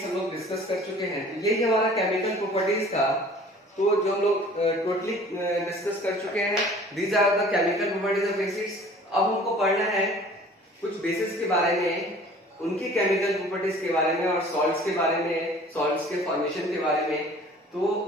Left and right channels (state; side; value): normal; both; correlation 0.49